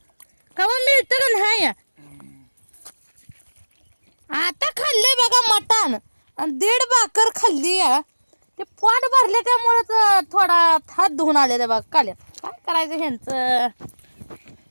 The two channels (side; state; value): both; inverted; correlation -1.00